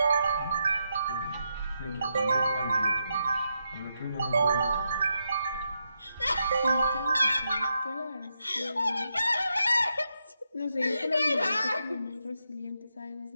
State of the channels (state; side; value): inverted; both; correlation -0.83